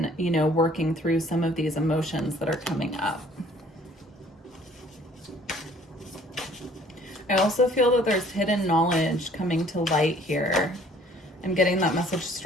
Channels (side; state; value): both; normal; correlation 0.57